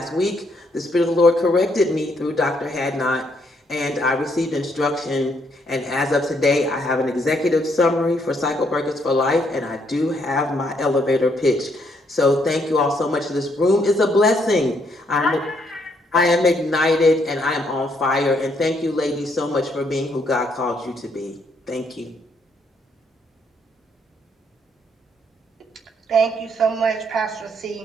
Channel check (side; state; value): both; normal; correlation 0.72